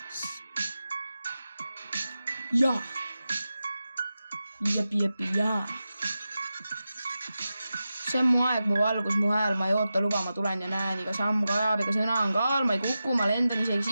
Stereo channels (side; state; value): both; inverted; correlation -0.92